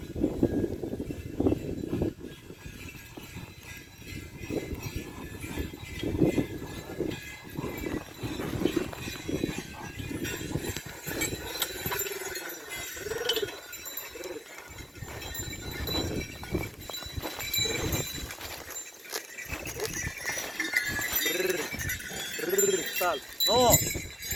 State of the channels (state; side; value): identical; both; correlation 1.00